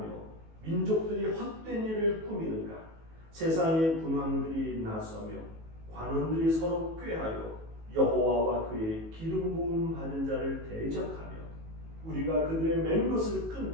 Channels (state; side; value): late; left; 18 ms